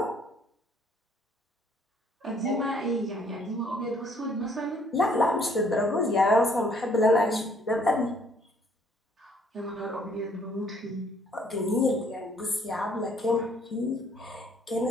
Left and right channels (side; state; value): both; normal; correlation 0.62